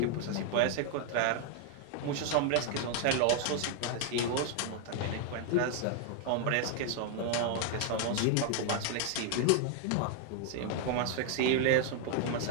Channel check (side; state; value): both; different; correlation 0.00